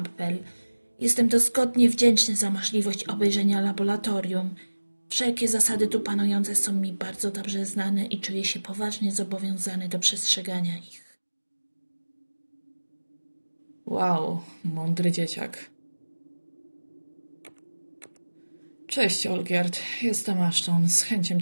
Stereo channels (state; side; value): inverted; both; correlation -1.00